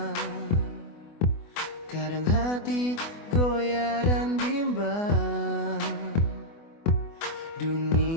kadang hati goyah dan bimbang.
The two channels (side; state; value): right; late; 24 ms